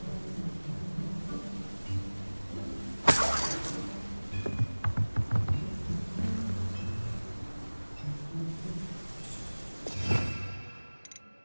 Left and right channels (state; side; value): inverted; both; correlation -1.00